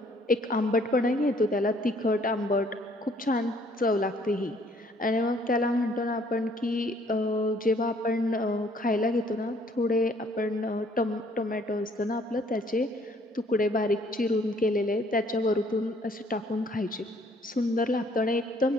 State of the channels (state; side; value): normal; both; correlation 0.61